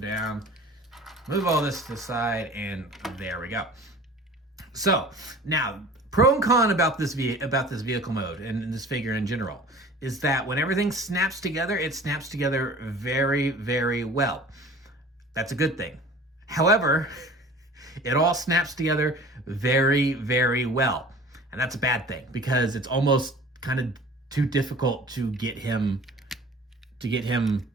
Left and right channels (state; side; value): normal; both; correlation 0.44